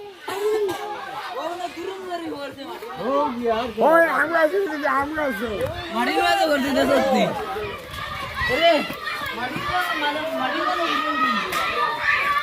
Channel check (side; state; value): both; identical; correlation 1.00